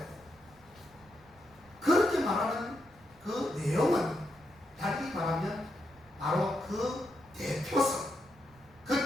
그렇게 말하는 그 내용은 달리 말하면 바로 그 대표성,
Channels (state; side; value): noise; right; rumble, 26 dB below the sound